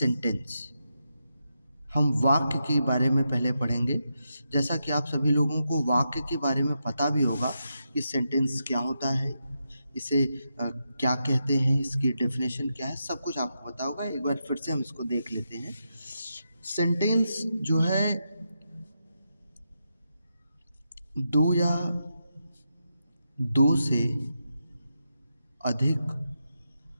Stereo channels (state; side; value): inverted; both; correlation -0.85